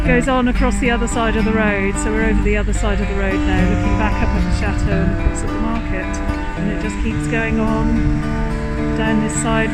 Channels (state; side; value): identical; both; correlation 1.00